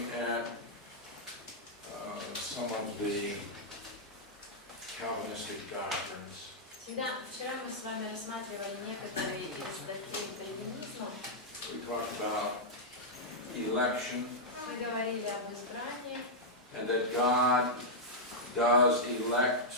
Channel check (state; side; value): normal; both; correlation -0.07